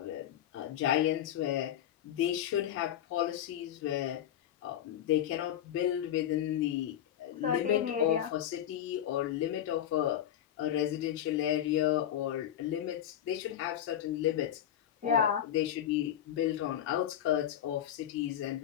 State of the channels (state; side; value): quieter; right; 10.7 dB